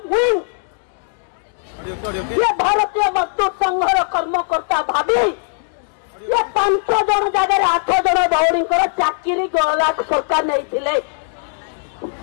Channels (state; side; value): silent; right; digital silence